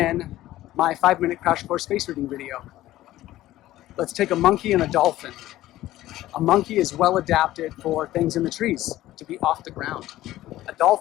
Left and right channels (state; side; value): quieter; right; 15.1 dB